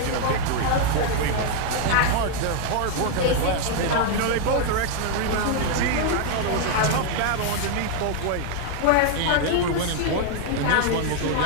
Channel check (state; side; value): different; both; correlation 0.00